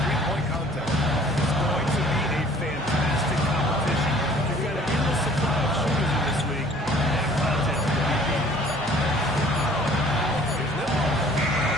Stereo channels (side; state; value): both; normal; correlation 0.53